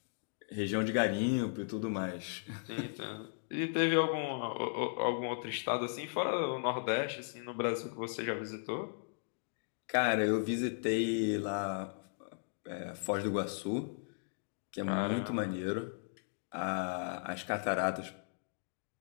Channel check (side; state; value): right; silent; digital silence